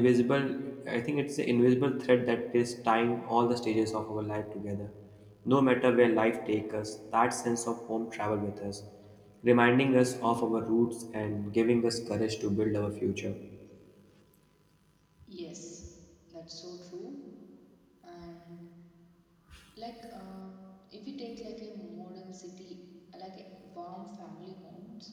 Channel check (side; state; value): both; identical; correlation 1.00